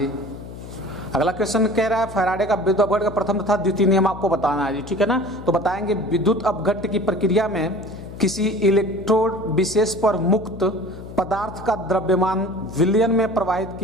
अगला क्वेश्चन कह रहा है फैराडे का विद्युत अपघट्य का प्रथम तथा द्वितीय नियम आपको बताना है जी, ठीक है ना। तो बताएंगे विद्युत अपघट्य की प्रक्रिया में किसी इलेक्ट्रोड विशेष पर मुक्त पदार्थ का द्रव्यमान विलयन में प्रवाहित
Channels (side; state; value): left; noise; hum, 13 dB below the sound